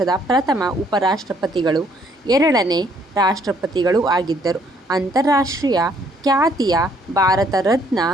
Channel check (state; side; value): normal; both; correlation 0.66